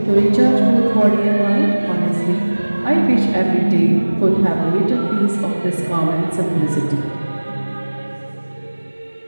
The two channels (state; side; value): inverted; both; correlation -1.00